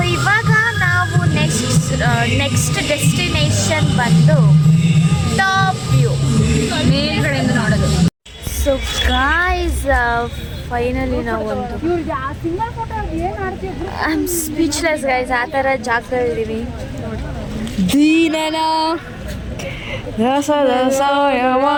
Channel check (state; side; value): identical; both; correlation 1.00